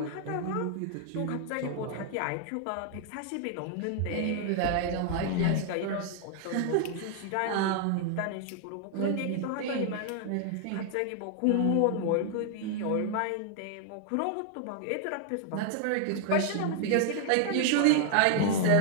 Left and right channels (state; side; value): different; both; correlation 0.00